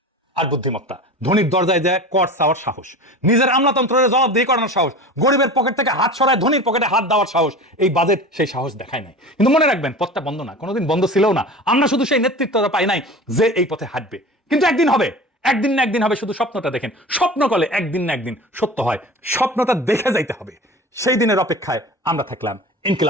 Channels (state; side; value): normal; both; correlation 0.35